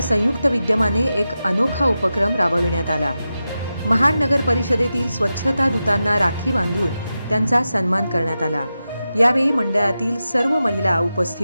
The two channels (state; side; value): inverted; both; correlation -0.91